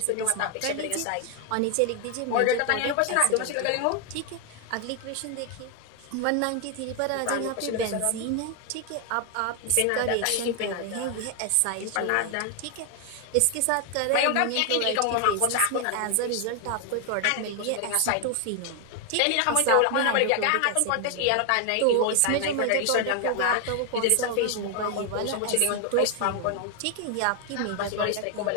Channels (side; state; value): both; different; correlation 0.01